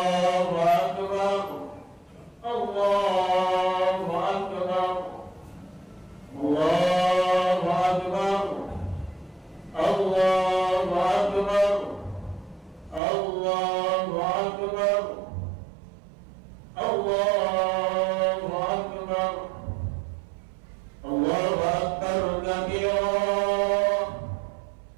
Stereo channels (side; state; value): left; drops out; at 13.0 s